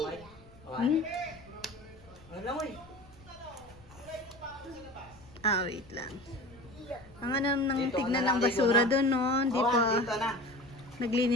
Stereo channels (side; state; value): left; noise; rumble, 24 dB below the sound